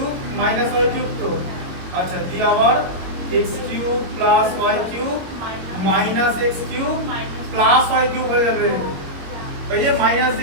minus y cube, তো আচ্ছা দিয়ে আবার x cube plus y cube minus x cube plus y cube হয়ে যাবে। এই যে মাইনাস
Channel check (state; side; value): late; left; 21 ms